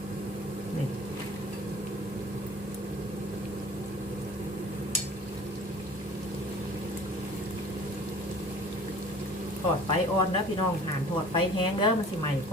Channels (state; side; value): normal; both; correlation 0.46